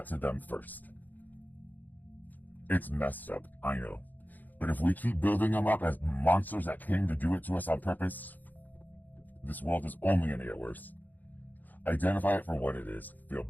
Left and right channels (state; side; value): late; right; 0.085 ms